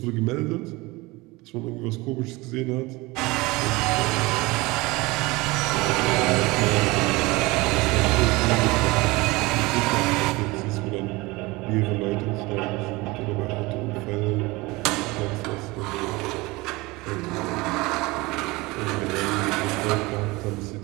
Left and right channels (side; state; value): left; quieter; 22.7 dB